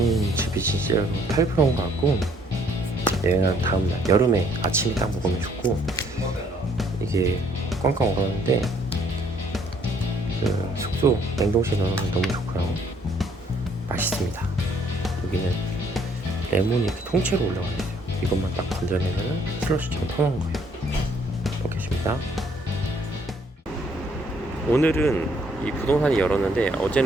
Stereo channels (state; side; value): normal; both; correlation 0.64